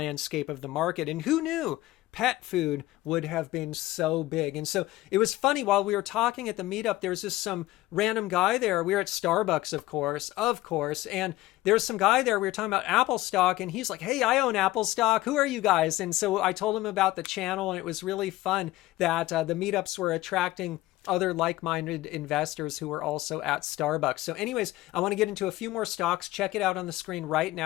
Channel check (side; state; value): right; quieter; 17.3 dB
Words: of the market. And who knew pet food would have been so big? And so it was funny, while we were talking at the meetup, there was just some random guy there. We were at Starbucks, of course. And there's some guy there. We were talking about Apple stock, and he's like, hey, I own Apple stock. Who are you guys? And so I told him about the channel, and it was really fun that the meetups were attracting other like-minded investors who were also at Starbucks. So anyways, I want to get into a few more stocks. Check it out on the screen right